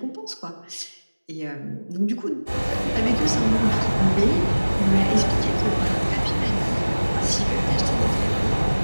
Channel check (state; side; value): inverted; both; correlation -1.00